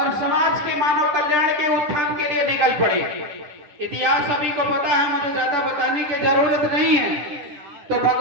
समाज के मानव कल्याण के उत्थान के लिए निकल पड़े। इतिहास सभी को पता है, मुझे ज्यादा बताने की जरूरत नहीं है। तो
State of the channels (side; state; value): left; late; 10 ms